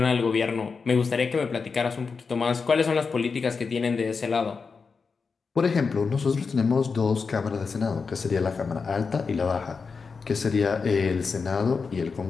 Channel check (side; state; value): right; quieter; 5.0 dB